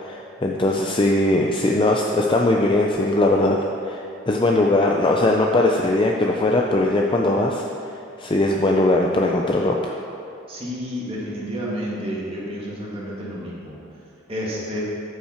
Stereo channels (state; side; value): normal; both; correlation 0.55